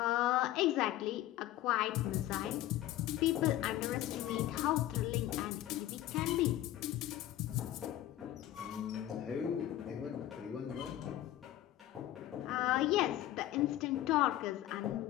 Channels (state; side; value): quieter; right; 13.9 dB